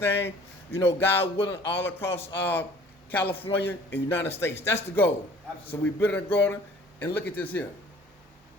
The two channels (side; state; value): both; normal; correlation 0.51